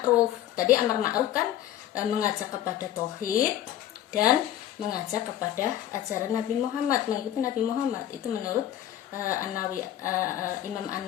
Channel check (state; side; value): quieter; right; 12.0 dB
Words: Tadi amar ma'ruf kan mengajak kepada tauhid dan mengajak kepada ajaran Nabi Muhammad, mengikuti Nabi Muhammad. Itu menurut Imam